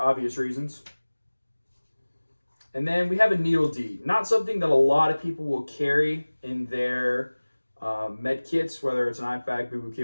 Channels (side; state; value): both; inverted; correlation -1.00